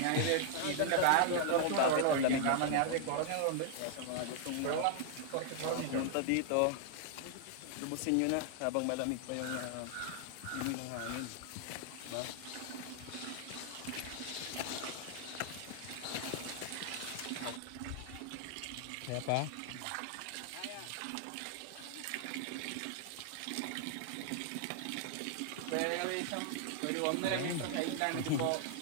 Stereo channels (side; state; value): both; different; correlation 0.00